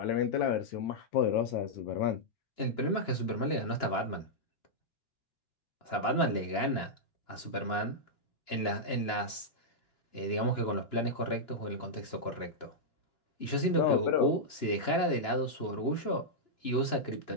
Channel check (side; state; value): right; late; 2.9 ms